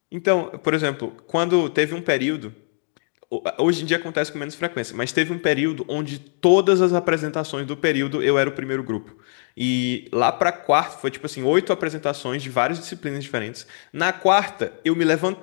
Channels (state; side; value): silent; right; digital silence